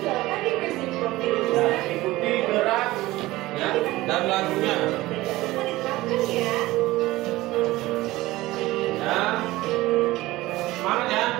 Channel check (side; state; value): left; quieter; 18.3 dB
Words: silakan dikasih profil Ya, lulusan. ikuti gerak ya dan lagunya. Jangan diterapkan ya. Ya, semangat ya.